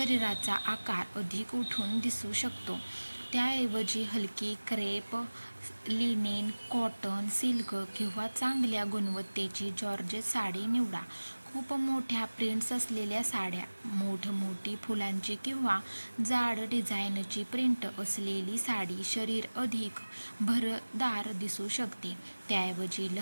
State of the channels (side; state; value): both; inverted; correlation -1.00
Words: आकार अधिक उठून दिसू शकतो. त्याऐवजी हलकी क्रेप, लिनेन, कॉटन, सिल्क किंवा चांगल्या गुणवत्तेची जॉर्जेट साडी निवडा. खूप मोठ्या प्रिंट्स असलेल्या साड्या, मोठी फुलांची किंवा जाड डिझाईनची प्रिंट असलेली साडी शरीर अधिक भरदार दिसू शकते. त्याऐवजी